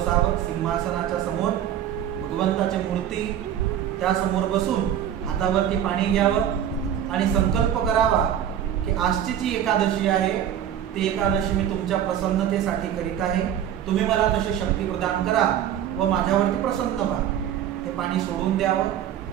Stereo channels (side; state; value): left; quieter; 10.2 dB